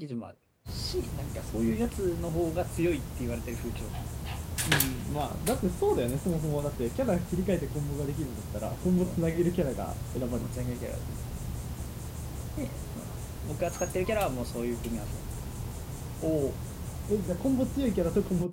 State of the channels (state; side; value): identical; both; correlation 1.00